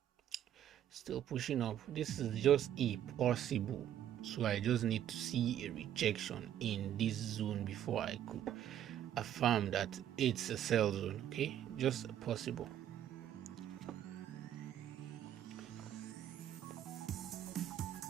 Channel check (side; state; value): left; quieter; 10.9 dB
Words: still pushing up. This is just a possible So I just need to see a rejection in this zone before I could affirm that it's a sell zone. Okay, just possible.